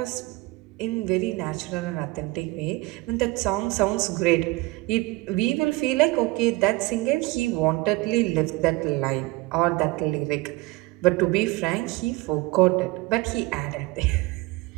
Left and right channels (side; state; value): left; quieter; 21.9 dB